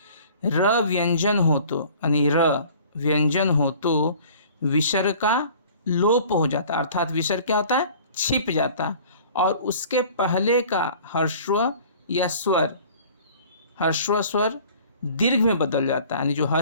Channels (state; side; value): inverted; both; correlation -0.48